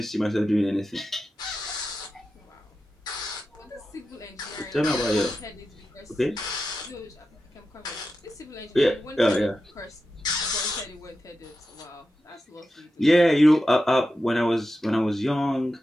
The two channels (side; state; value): both; normal; correlation 0.91